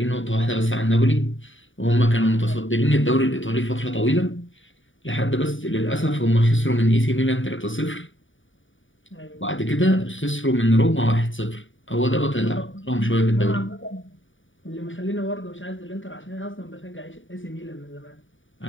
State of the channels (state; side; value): late; right; 0.57 ms